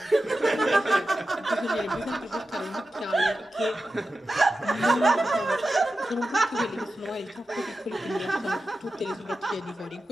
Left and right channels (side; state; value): both; normal; correlation 0.92